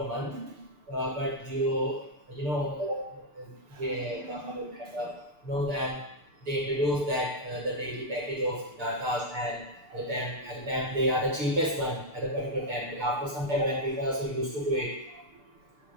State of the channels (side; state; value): left; late; 6.8 ms